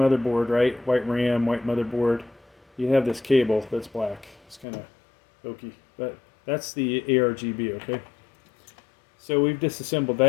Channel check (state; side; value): drops out; right; at 4.7 s